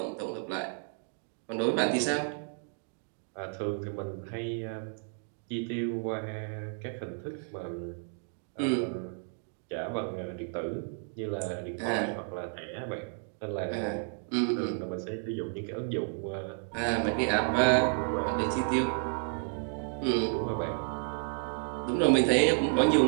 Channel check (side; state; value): left; silent; 57 dB below the other